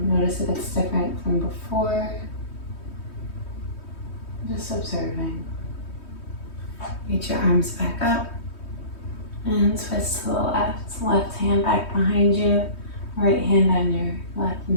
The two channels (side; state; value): right; late; 3.2 ms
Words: Notice if it's different from before. Just observing. Reach your arms back up. And twist to the left. Left hand back behind you. Right hand on your left